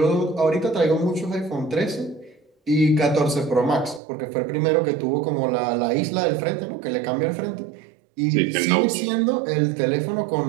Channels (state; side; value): drops out; left; at 4.0 s